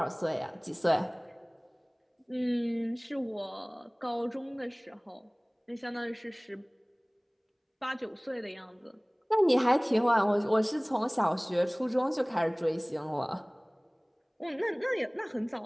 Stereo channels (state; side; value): identical; both; correlation 1.00